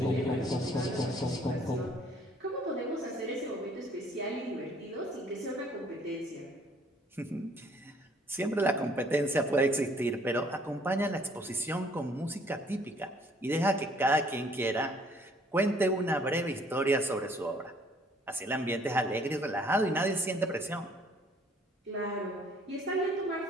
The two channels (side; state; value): both; normal; correlation 0.60